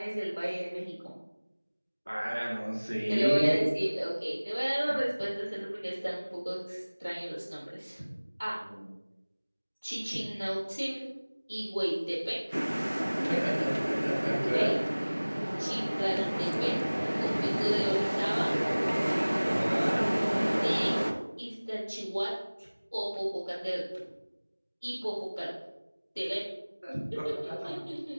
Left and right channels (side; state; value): both; inverted; correlation -1.00